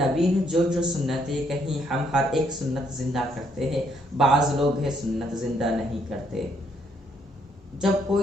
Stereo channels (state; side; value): normal; both; correlation 0.70